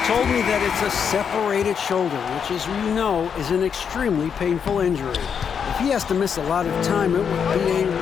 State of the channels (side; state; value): right; quieter; 7.1 dB